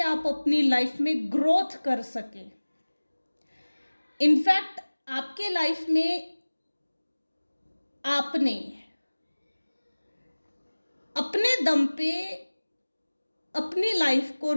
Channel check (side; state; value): both; inverted; correlation -1.00